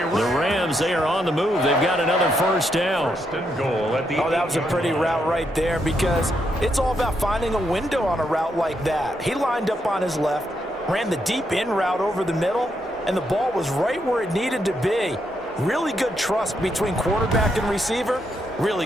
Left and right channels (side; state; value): both; normal; correlation 0.79